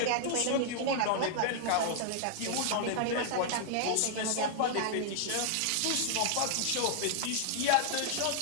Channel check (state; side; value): different; both; correlation 0.00